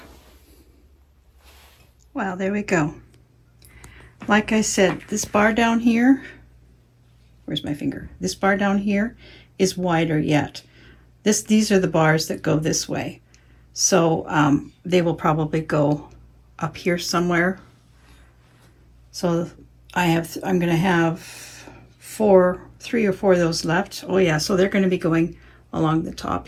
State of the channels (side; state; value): both; identical; correlation 1.00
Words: Well, there we go. Like I said, this bar down here, where's my finger? This bar down here is wider yet. These are the bars that go this way. So they will probably go up here somewhere. So I'm going to have 3 or 4 of those left. Oh yeah, so they're going to be going along the top